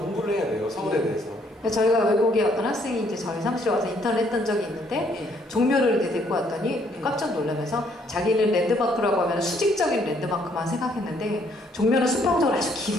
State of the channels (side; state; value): both; normal; correlation 0.67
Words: 해야 돼요. 서울에 대해서. 저희가 외국에 어떤 학생이 이제 저희 사무실에 와서 인턴을 했던 적이 있는데 종묘를 이렇게 데리고 왔더니 깜짝 놀라면서 자기는 랜드마크라고 하면 수직적인 랜드마크만 생각했는데 종묘는 수평적으로 아주